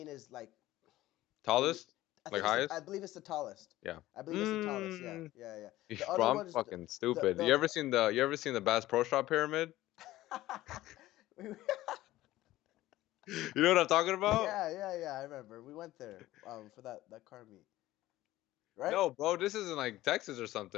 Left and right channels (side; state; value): right; quieter; 16.0 dB